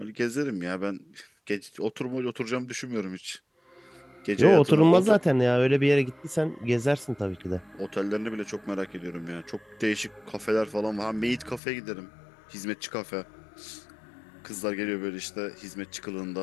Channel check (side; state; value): right; drops out; at 11.6 s